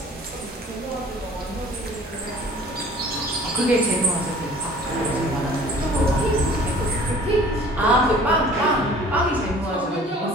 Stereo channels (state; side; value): normal; both; correlation 0.49